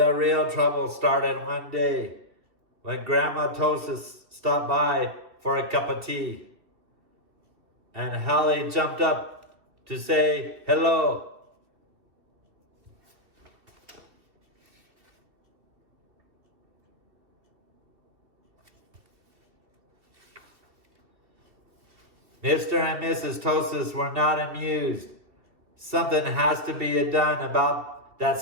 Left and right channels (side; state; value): left; late; 2.7 ms